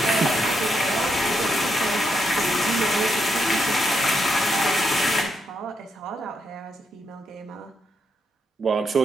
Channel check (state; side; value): normal; both; correlation 0.81